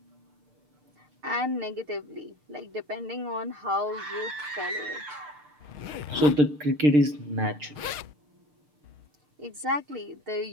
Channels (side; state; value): left; late; 6.7 ms